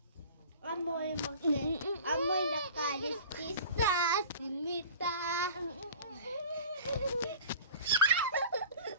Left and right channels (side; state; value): both; inverted; correlation -0.42